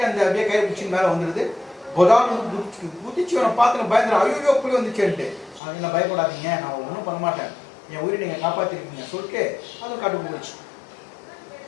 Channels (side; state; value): right; drops out; at 5.6 s